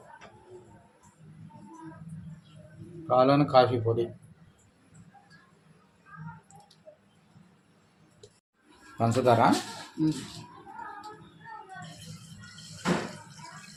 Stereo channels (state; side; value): identical; both; correlation 1.00